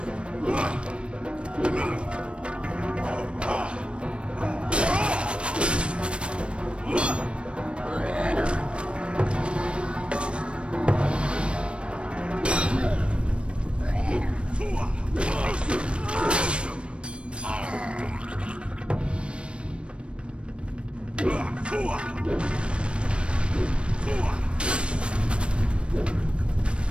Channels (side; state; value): left; late; 0.058 ms